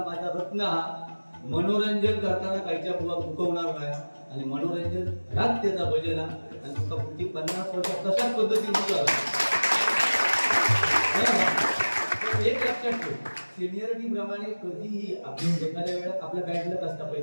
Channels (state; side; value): inverted; both; correlation -1.00